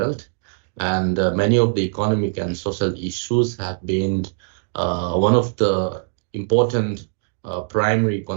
And many of the economic and social issues have been one of the important primary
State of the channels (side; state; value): left; silent; digital silence